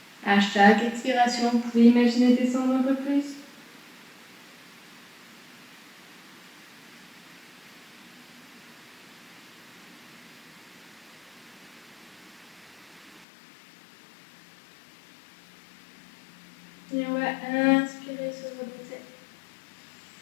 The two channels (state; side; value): drops out; right; at 13.2 s